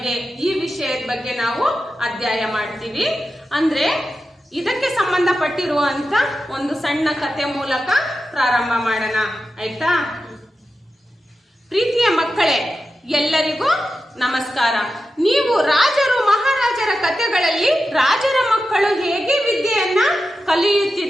ಈ ವಿಷಯದ ಬಗ್ಗೆ ನಾವು ಅಧ್ಯಯನ ಮಾಡ್ತೀವಿ. ಅಂದ್ರೆ ಇದಕ್ಕೆ ಸಂಬಂಧಪಟ್ಟಿರುವಂತ ಒಂದು ಸಣ್ಣ ಕಥೆ ಮೂಲಕ ಪ್ರಾರಂಭ ಮಾಡೋಣ, ಆಯ್ತಾ? ಪ್ರೀತಿಯ ಮಕ್ಕಳೇ, ಎಲ್ಲರಿಗೂ ನಮಸ್ಕಾರ. ನೀವು ರಾಜರು ಮಹಾರಾಜರ ಕಥೆಗಳಲ್ಲಿ ರಾಜರ ಮಕ್ಕಳು ಹೇಗೆ ವಿದ್ಯೆಯನ್ನ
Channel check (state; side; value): normal; both; correlation 0.91